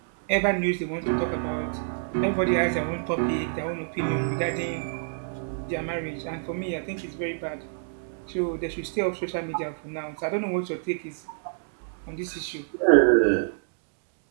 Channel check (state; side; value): silent; left; digital silence